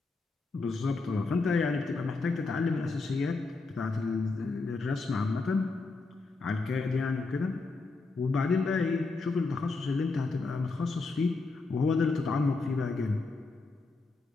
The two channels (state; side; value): quieter; right; 3.8 dB